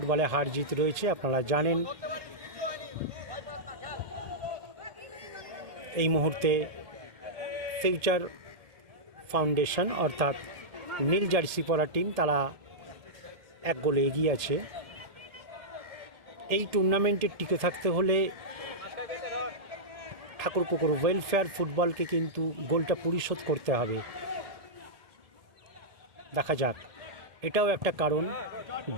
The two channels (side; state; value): left; late; 1.7 ms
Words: হার জিত রয়েছে, আপনারা জানেন। এই মুহূর্তে ফিউচার ফাউন্ডেশন অর্থাৎ নীল জার্সি পরা টিম, তারা 1 গোলে এগিয়ে আছে। এই টুর্নামেন্টে টিকে থাকতে হলে ঠাকুরপুকুর ওয়েলফেয়ার ফুটবলকে কিন্তু গোলটা পরিশোধ করতে হবে। দেখা যাক, এটাও একটা কারণ।